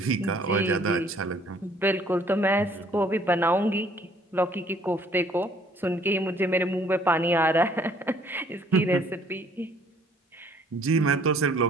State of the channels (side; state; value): both; normal; correlation 0.60